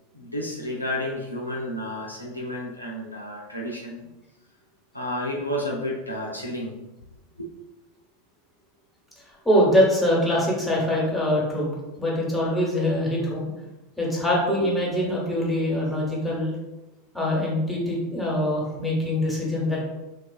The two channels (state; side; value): normal; both; correlation 0.32